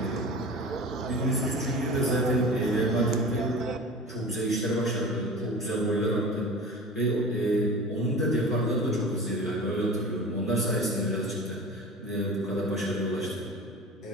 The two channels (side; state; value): both; normal; correlation 0.35